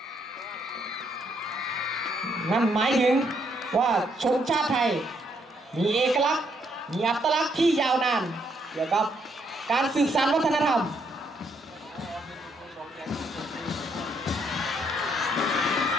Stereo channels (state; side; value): normal; both; correlation 0.73